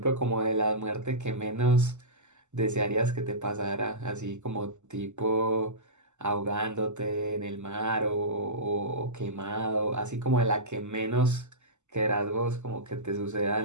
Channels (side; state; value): left; late; 0.84 ms